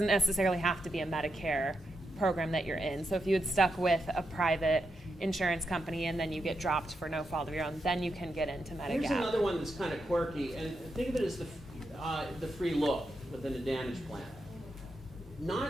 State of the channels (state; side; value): normal; both; correlation 0.84